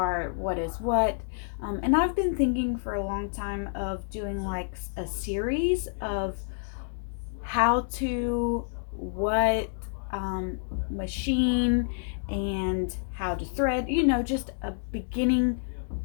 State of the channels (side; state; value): right; silent; digital silence